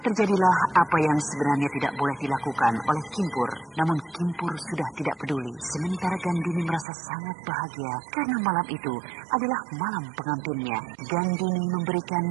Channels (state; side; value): drops out; left; at 6.9 s